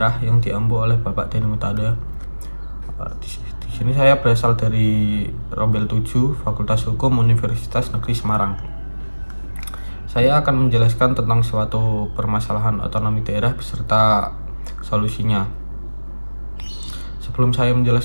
yang diampu oleh Bapak Deni Mutada. Di sini saya berasal dari Rombel 7, Fakultas Hukum Universitas Negeri Semarang. Saya akan menjelaskan tentang suatu permasalahan otonomi daerah beserta solusinya. Sebelum saya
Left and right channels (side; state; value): both; inverted; correlation -1.00